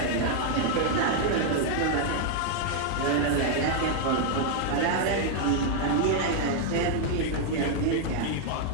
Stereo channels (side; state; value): both; different; correlation 0.00